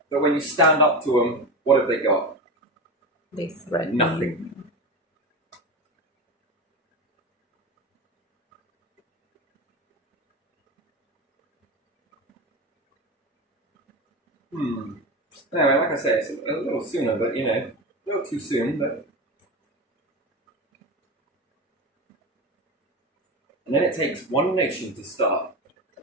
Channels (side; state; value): both; normal; correlation 0.22